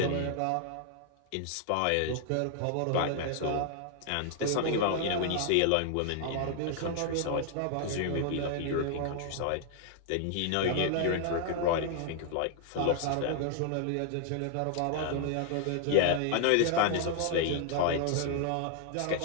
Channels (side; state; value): both; different; correlation 0.00